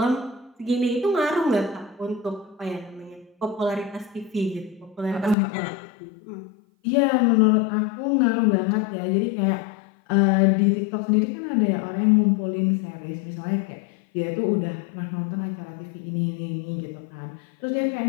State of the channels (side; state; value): right; drops out; at 5.4 s